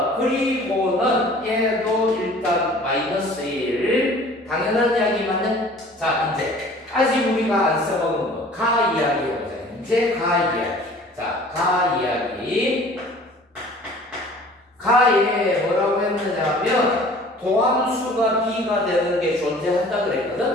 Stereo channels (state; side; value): normal; both; correlation 0.48